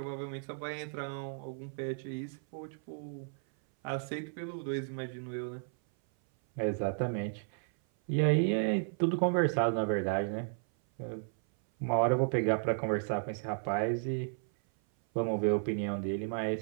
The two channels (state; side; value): silent; left; 55 dB below the other